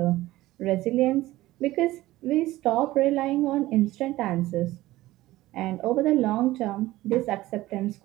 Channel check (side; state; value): left; quieter; 17.0 dB